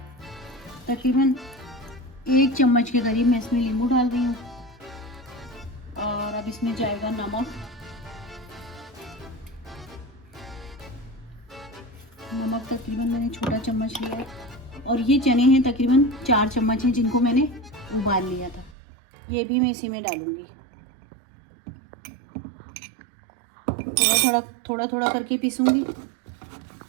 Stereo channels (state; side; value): drops out; left; at 18.8 s